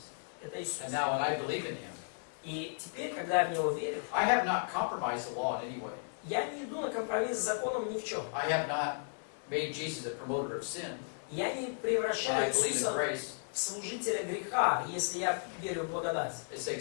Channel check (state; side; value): silent; right; 55 dB below the other